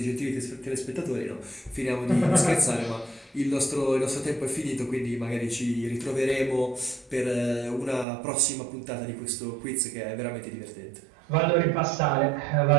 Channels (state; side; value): drops out; left; at 8.1 s